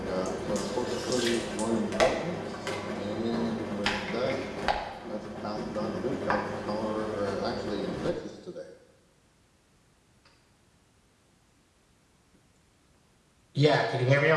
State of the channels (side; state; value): both; identical; correlation 1.00